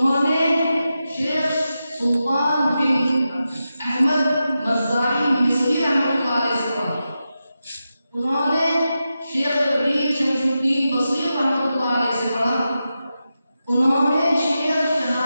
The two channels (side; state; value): both; inverted; correlation -0.90